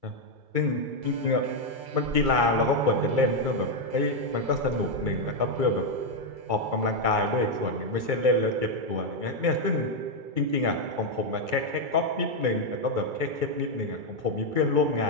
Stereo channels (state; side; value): late; left; 2.3 ms